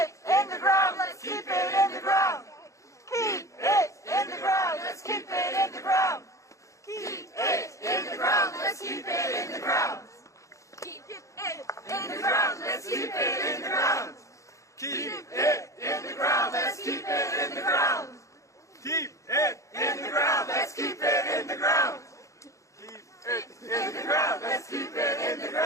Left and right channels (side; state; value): right; late; 0.15 ms